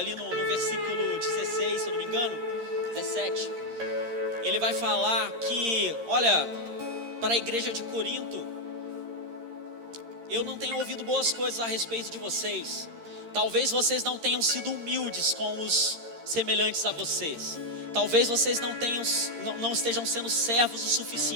no versículo 16, se eu não me engano, 17, ele vai falar que, olha, para a igreja de Corinto, eu não tenho ouvido boas coisas a respeito de vocês. Talvez vocês não tenham sido humildes com os semelhantes a vocês. Talvez vocês não estejam sendo servos o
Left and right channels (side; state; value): left; late; 13 ms